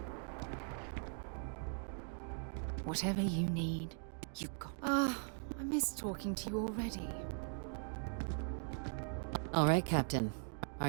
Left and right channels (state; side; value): silent; left; 51 dB below the other